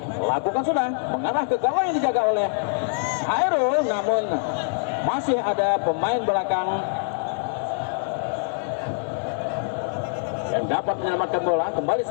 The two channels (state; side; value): silent; right; digital silence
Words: Lakukan sudah, mengarah ke gawang yang dijaga oleh Hairul, namun masih ada pemain belakang yang dapat menyelamatkan bola. Kembali